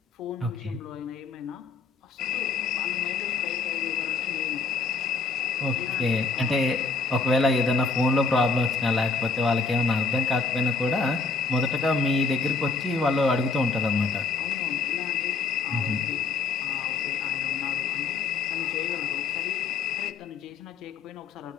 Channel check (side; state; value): right; quieter; 4.4 dB